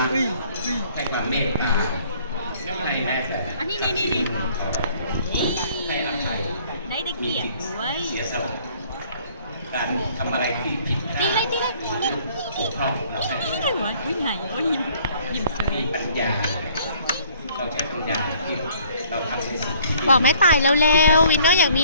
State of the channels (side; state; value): both; inverted; correlation -0.58